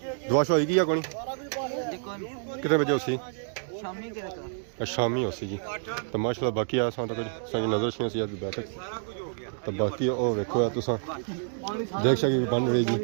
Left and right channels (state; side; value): silent; left; digital silence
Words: दुआ शुआ होगी या कोनी? कितने बजे उसी शामी उसी जी। तो माशाल्लाह बाकी आया सा तक नजर सी सी बैठक। तो बाकी ओ देखो तुसा देख सके बन रही जी,